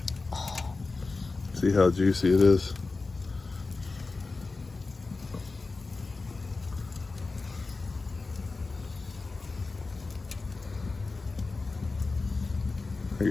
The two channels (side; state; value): right; quieter; 3.8 dB